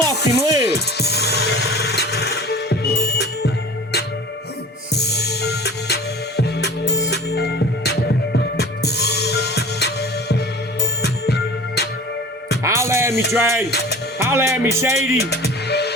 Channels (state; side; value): normal; both; correlation 0.42